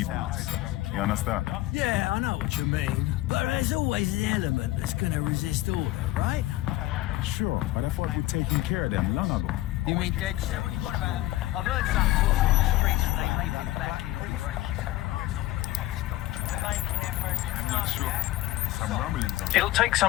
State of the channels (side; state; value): right; quieter; 16.4 dB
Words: boots. You understand? Yeah, I know what you mean. But there's always an element that's gonna resist order, right? Sure, but I thought we'd taken care of them long ago. You mean DedSec? What do you want about them? I've heard some talk on the streets that they may be back in operation. I'm not sure. Some rumblings on It'll take